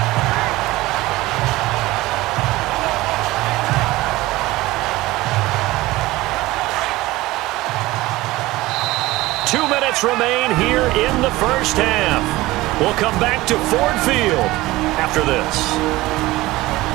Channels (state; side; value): quieter; left; 18.8 dB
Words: Two minutes remain here in the first half. We'll come back to Ford Field after this.